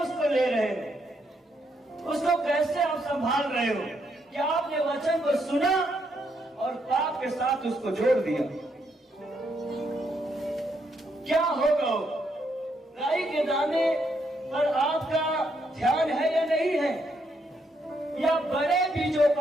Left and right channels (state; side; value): normal; both; correlation 0.76